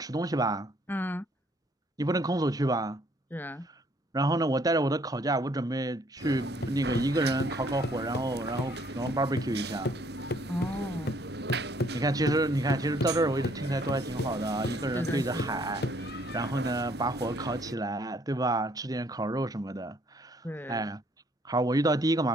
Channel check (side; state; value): both; normal; correlation 0.64